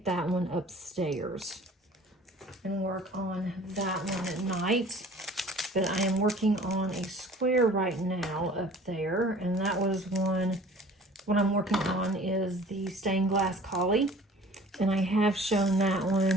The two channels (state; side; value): normal; both; correlation 0.48